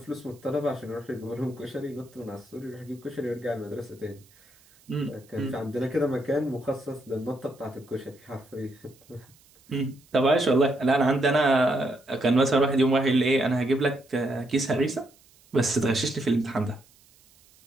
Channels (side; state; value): right; noise; hiss, 29 dB below the sound